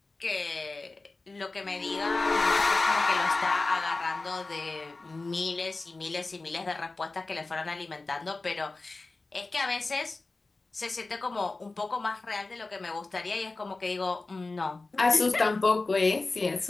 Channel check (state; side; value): quieter; right; 3.4 dB